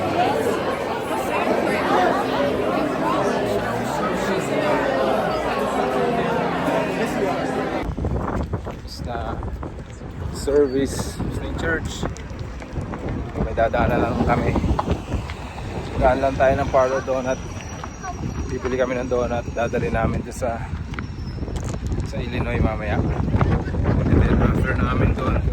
Na service ng church, may dadaanan lang kami. Daan lang tayo ng Parlor Donut, bibili kami ng donut, dadali namin doon sa Illinois mamaya. And then after namin doon,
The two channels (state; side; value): identical; both; correlation 1.00